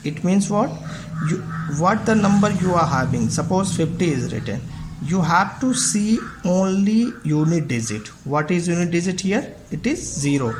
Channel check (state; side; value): identical; both; correlation 1.00